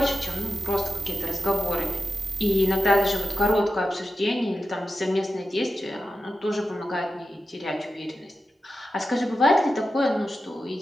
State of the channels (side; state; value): both; normal; correlation 0.91